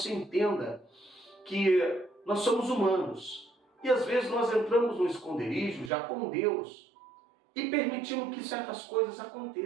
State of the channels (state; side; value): drops out; left; at 5.9 s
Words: entenda que nós somos humanos, e às vezes nós entramos no esconderijo já com Deus, e permitimos que certas coisas